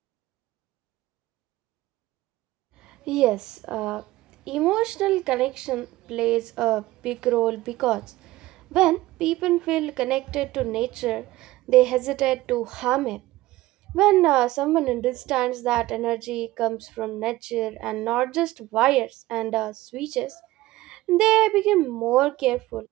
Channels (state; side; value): quieter; left; 17.6 dB